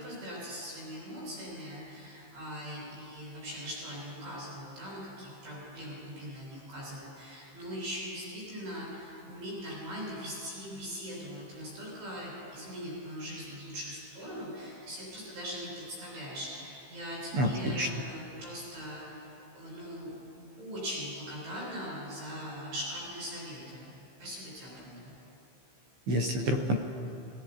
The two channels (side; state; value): left; late; 15 ms